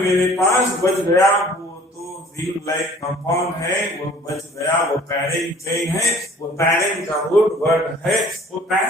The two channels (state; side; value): normal; both; correlation 0.52